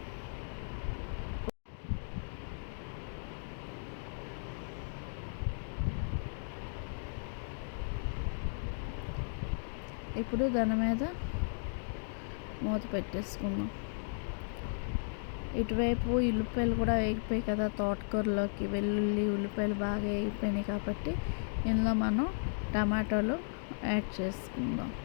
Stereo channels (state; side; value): silent; right; digital silence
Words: ఇప్పుడు దాని మీద మూత పెట్టేసుకుందాం. ఇటువైపు ఉల్లిపాయలు కూడా వేగిపోయాయి కదా తోటకూరలోకి. వెల్లుల్లి, ఉల్లిపాయలు బాగా వేగిపోయినాయి కాబట్టి ఇందులో మనం టమాటాలు యాడ్ చేసుకుందాం.